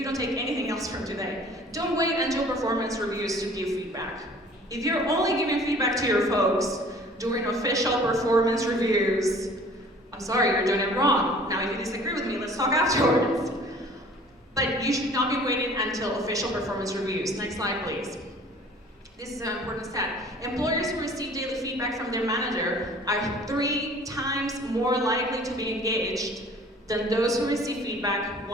don't take anything else from today, don't wait until performance reviews to give feedback. If you're only giving feedback to your folks during official performance reviews, I'm sorry, you're doing it wrong. Now, if you disagree with me, let's talk afterwards. But you should not be waiting until official performance reviews. Next slide, please. This is an important stat. Employers who receive daily feedback from their manager are 3 times more likely to be engaged than those who receive feedback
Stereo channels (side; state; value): both; normal; correlation 0.50